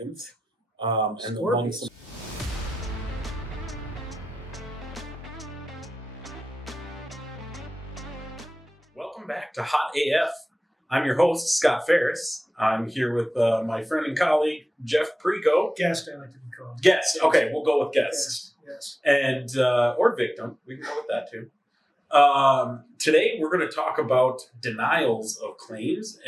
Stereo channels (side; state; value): both; normal; correlation 0.95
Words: And among some. Welcome back to Hot AF. I'm your host, Scott Ferris. I'm here with my friend and colleague, Jeff Pricco. Guest, I like to be called. Guest. Okay, we'll go with guest. Yes. And or victim. We can go with that too. Today we're going to talk about denials of claims